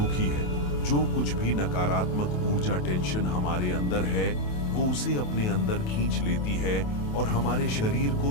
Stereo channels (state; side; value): late; right; 28 ms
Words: है। जो कुछ भी नकारात्मक ऊर्जा, टेंशन हमारे अंदर है, वो उसे अपने अंदर खींच लेती है और हमारे शरीर को